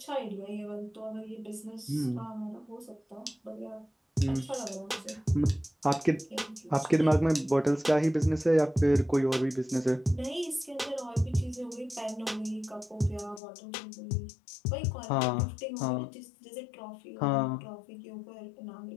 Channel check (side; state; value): right; drops out; at 13.4 s